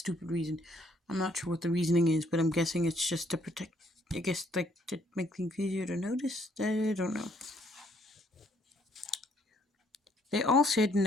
reason. I'm not sure what the reasoning is, but I'm guessing it's just to protect, I guess, like, to make things easier to notice. I don't know. They all said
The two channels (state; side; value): normal; both; correlation 0.67